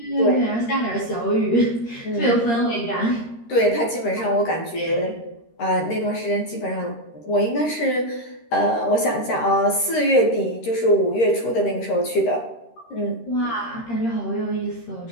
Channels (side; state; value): right; late; 13 ms